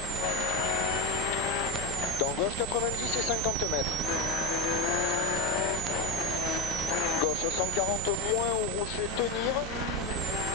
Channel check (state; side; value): normal; both; correlation 0.16